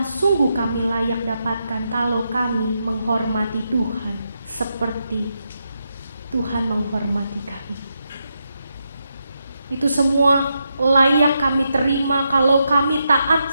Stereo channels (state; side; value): inverted; both; correlation -0.84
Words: sungguh kami layak dapatkan kalau kami menghormati Tuhan seperti Tuhan menghormati kami. Itu semua layak kami terima kalau kami